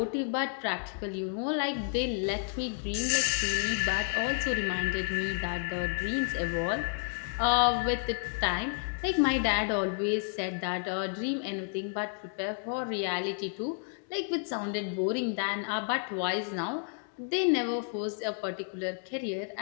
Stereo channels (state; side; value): silent; right; 56 dB below the other